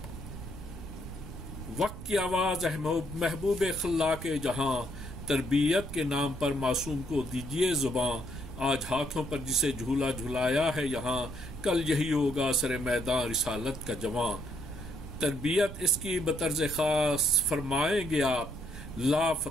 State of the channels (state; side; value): noise; right; rumble, 10 dB below the sound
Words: وقت کی آواز ہے محبوب خلاق جہاں، تربیت کے نام پر معصوم کو دیجیے زباں، آج ہاتھوں پر جسے جھولا جھلایا ہے یہاں، کل یہی ہوگا سر میدان رسالت کا جواں، تربیت اس کی بطرز خاص فرمائیں گے آپ، لا